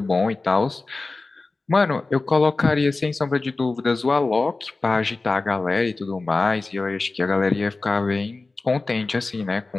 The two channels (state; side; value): quieter; right; 3.5 dB